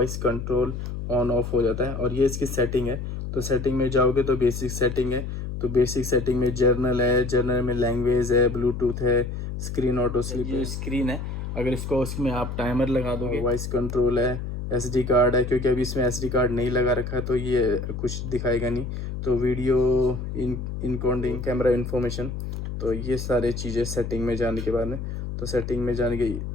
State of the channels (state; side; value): noise; left; hum, 6 dB below the sound